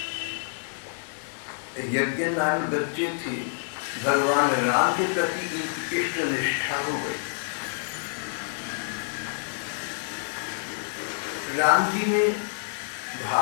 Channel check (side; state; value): right; silent; digital silence